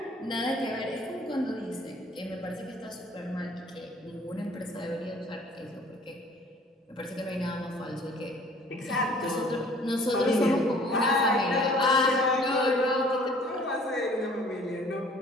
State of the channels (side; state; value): both; normal; correlation 0.53